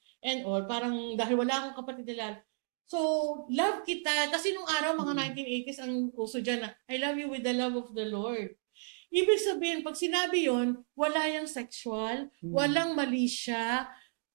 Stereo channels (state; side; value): silent; left; digital silence